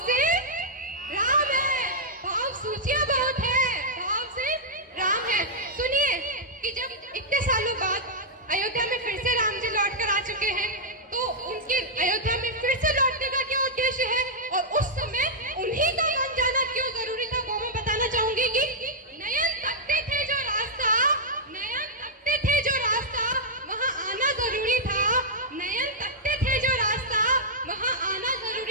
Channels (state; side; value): normal; both; correlation -0.07